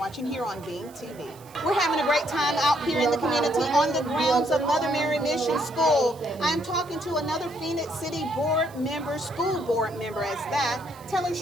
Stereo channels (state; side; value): noise; right; hiss, 24 dB below the sound